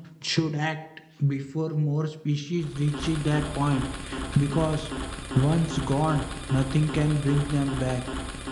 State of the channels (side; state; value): both; identical; correlation 1.00